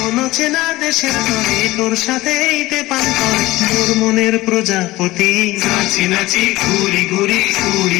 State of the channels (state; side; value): quieter; right; 18.4 dB